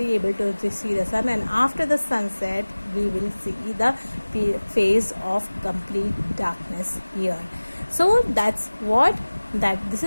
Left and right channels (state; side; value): inverted; both; correlation -1.00